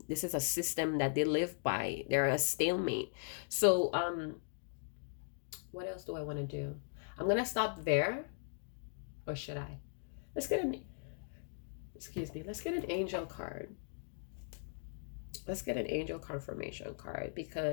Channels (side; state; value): right; silent; digital silence